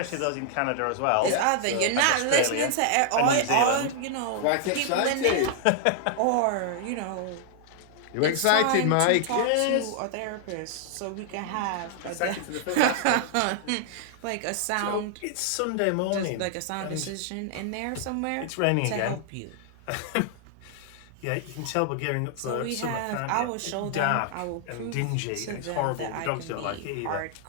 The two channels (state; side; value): different; both; correlation -0.01